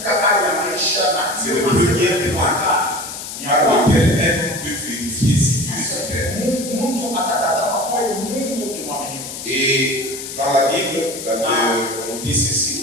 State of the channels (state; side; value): noise; left; hiss, 9 dB below the sound